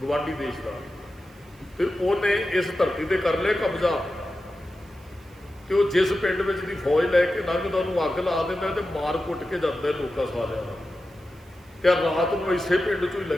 ਗਵਾਂਢੀ ਦੇਸ਼ ਦਾ, ਤੇ ਉਹਨੇ ਇਸ ਧਰਤੀ ਤੇ ਕਰ ਲਿਆ ਕਬਜ਼ਾ। ਤੇ ਉਹ ਜਿਸ ਪਿੰਡ ਵਿੱਚ ਦੀ ਫੌਜ ਲੈ ਕੇ ਲੰਘਦਾ ਉਹਨੂੰ ਅੱਗ ਲਾ ਦਿੰਦਾ ਤੇ ਮਾਰ ਕੁੱਟ ਕੇ ਜਾਂਦਾ ਲੋਕਾਂ ਸਾਰਿਆਂ ਨੂੰ। ਤੇ ਰਾਤ ਨੂੰ ਇਸੇ ਪਿੰਡ 'ਚੋਂ ਹੀ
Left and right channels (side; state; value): right; noise; hiss, 30 dB below the sound